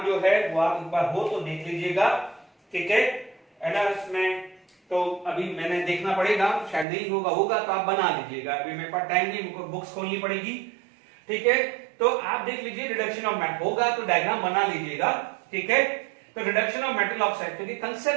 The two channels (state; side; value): drops out; left; at 6.9 s